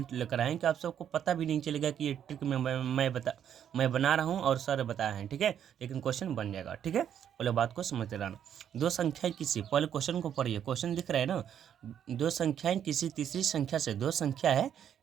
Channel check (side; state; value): left; quieter; 9.3 dB